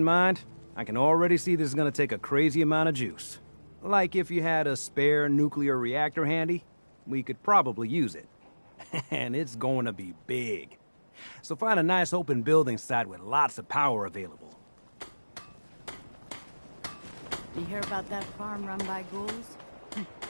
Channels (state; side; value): inverted; both; correlation -1.00